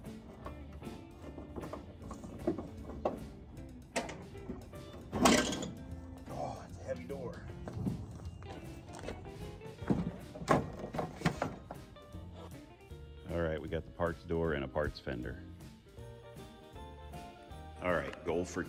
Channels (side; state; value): both; identical; correlation 1.00